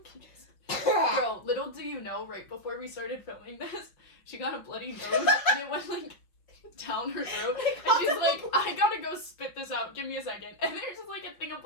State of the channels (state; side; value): late; right; 5.5 ms